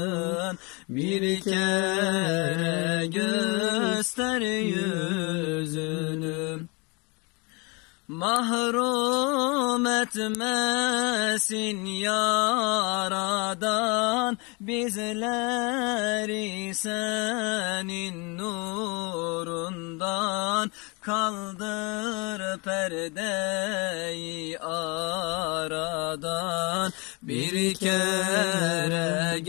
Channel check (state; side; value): quieter; right; 29.6 dB